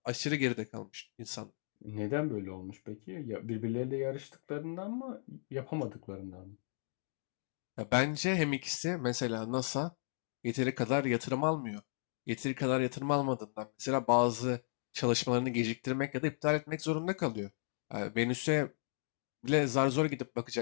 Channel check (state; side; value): silent; right; digital silence